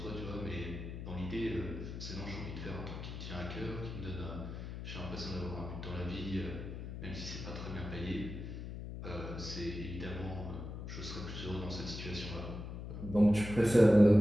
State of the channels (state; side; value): noise; left; hum, 7 dB below the sound